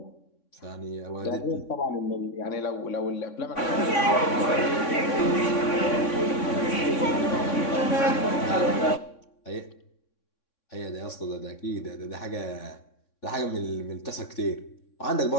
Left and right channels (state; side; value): late; right; 3.6 ms